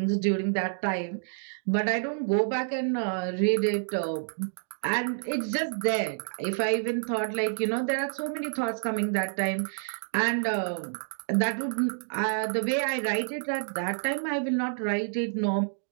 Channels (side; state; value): left; silent; digital silence